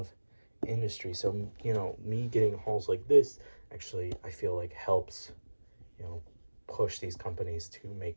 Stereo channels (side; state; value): both; inverted; correlation -1.00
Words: industry. So, you know, me getting hauls like this actually, I feel like helps, you know, push these companies to